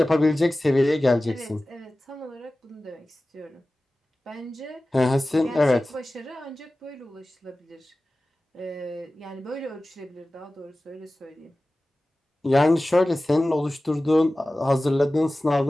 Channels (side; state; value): both; normal; correlation 0.96